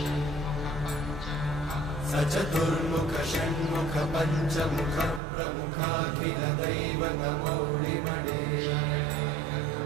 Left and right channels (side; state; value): left; drops out; at 5.2 s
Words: सचतुर्मुख षण्मुख पञ्चमुख प्रमुखाखिल दैवतमौळिमणे